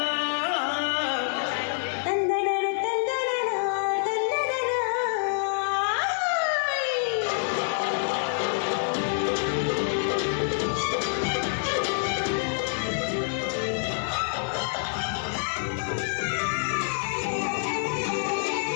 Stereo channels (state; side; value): silent; right; digital silence